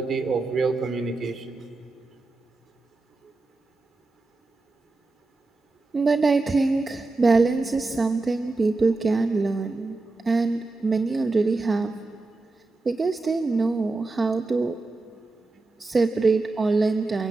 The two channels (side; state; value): left; quieter; 3.4 dB